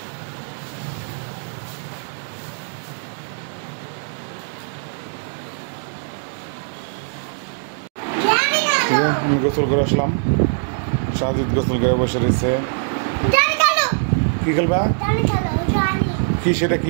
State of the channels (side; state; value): left; silent; digital silence